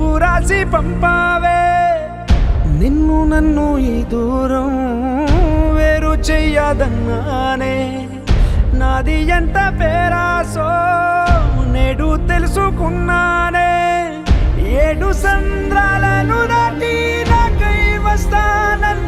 రాసి పంపావే. నిన్ను నన్ను ఈ దూరం వేరు చెయ్యదన్నానే, నాది ఎంత పేరాసో నేడు తెలుసుకున్నానే. 7 సంద్రాలను దాటి నాకై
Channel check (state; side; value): identical; both; correlation 1.00